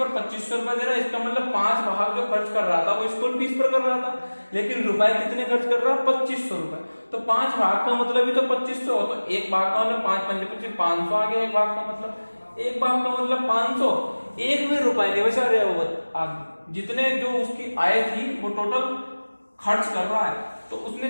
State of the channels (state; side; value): inverted; both; correlation -1.00